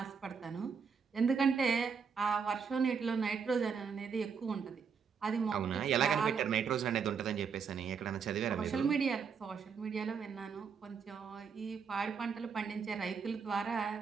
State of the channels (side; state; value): left; quieter; 6.2 dB